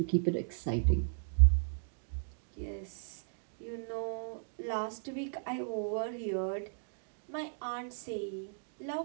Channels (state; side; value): silent; left; digital silence